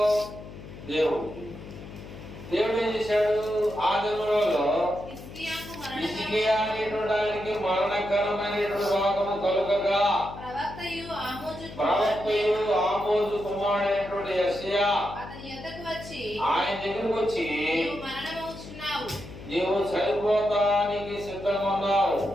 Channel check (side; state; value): left; noise; hum, 14 dB below the sound